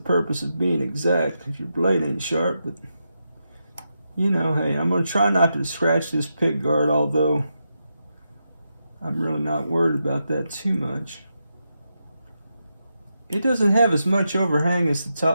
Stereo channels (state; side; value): inverted; both; correlation -0.86